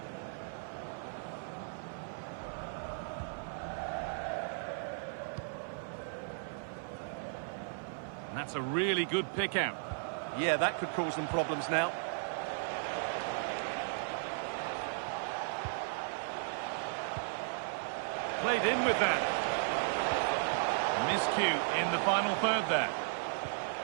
And that's a really good pick out. Yeah, that could cause them problems now. Played in with that. Miscue in the final third there.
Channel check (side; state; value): left; silent; digital silence